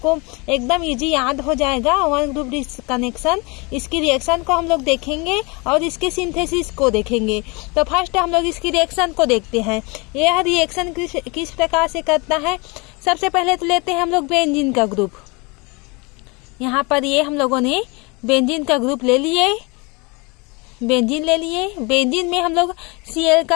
एकदम इजी याद हो जाएगा वन ग्रुप डिस्कनेक्शन। इसकी रिएक्शन को हम लोग देखेंगे और इसके सिंथेसिस को देखेंगे। तो फर्स्ट हम लोग इसकी रिएक्शन को देखते हैं। यह रिएक्शन किस प्रकार से करता है। सबसे पहले तो लेते हैं हम लोग बेंजीन का ग्रुप। यहाँ पर ये हम लोगों ने बेंजीन का ग्रुप ले लिए, बेंजीन ले लिए। बेंजीन में हम लोग Cl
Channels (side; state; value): right; quieter; 28.3 dB